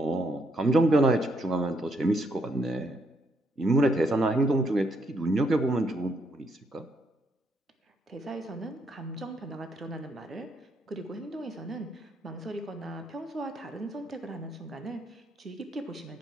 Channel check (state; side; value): normal; both; correlation 0.74